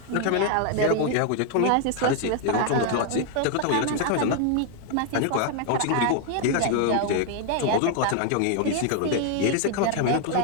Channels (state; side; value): different; both; correlation 0.00